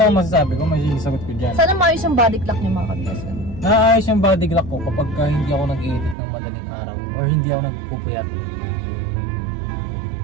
ang masasabi ko, may sagot ko dyan. Sana maayos yung body clock niya mga ka-business. Naayos yung body clock ko kapag hindi ako nag-edit ng madaling araw or hindi ako nagpupuyat.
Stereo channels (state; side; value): drops out; left; at 6.2 s